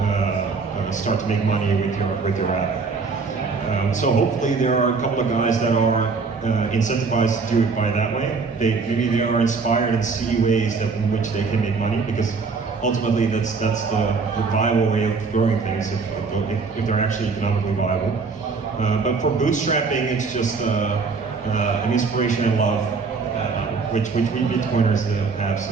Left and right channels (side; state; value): left; quieter; 4.7 dB